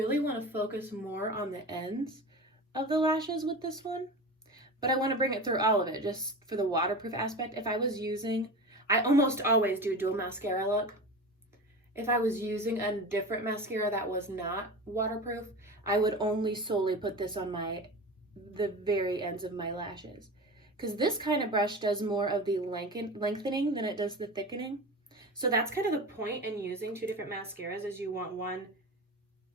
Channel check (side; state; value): both; normal; correlation 0.30